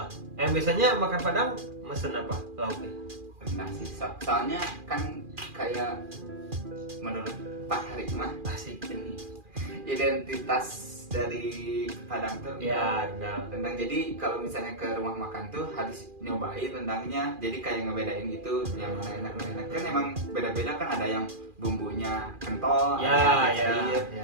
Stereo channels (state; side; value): late; left; 2.4 ms